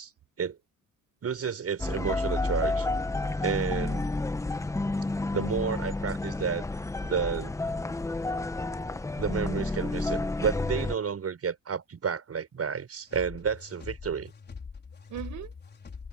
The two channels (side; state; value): both; normal; correlation 0.35